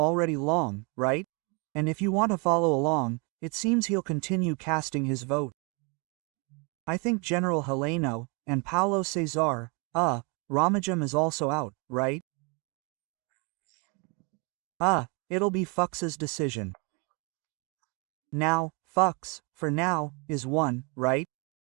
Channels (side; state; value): left; quieter; 32.3 dB